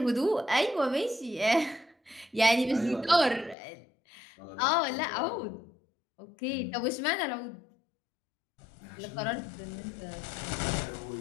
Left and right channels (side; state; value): right; drops out; at 3.6 s